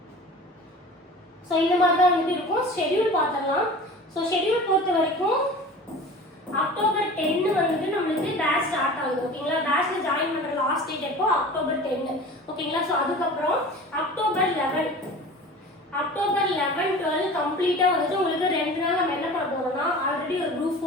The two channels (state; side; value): normal; both; correlation 0.38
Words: ஸோ இந்த மாதிரி தான் வந்துட்டு இருக்கும். ஷெட்யூல் பார்த்துடலாம். ஸோ ஷெட்யூல் பொறுத்த வரைக்கும் அக்டோபர் 10 வந்துட்டு நம்மளுக்கு பேட்ச் ஸ்டார்ட் ஆகுது. ஓகேங்களா? பேட்ச்ல ஜாயின் பண்ற லாஸ்ட் டேட் எப்போ? அக்டோபர் 10. ஓகேங்களா? ஸோ அதுக்கப்புறம் அக்டோபர் 11 12 கம்ப்ளீட்டா வந்துட்டு உங்களுக்கு 2 நாள் நம்ம என்ன பண்ண போறோம்னா ஆல்ரெடி ஒரு குரூப்